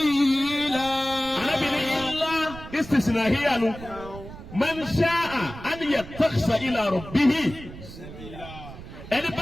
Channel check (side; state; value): right; noise; rumble, 14 dB below the sound